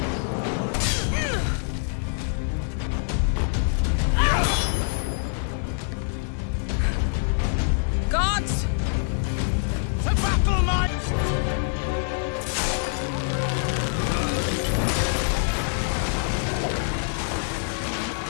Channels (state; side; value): silent; right; 62 dB below the other